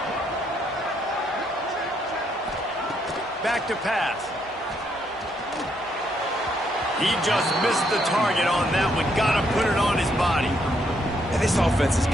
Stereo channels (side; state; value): both; normal; correlation 0.74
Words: Back to pass. He just missed the target on that one. Got to put it on his body. And this offense has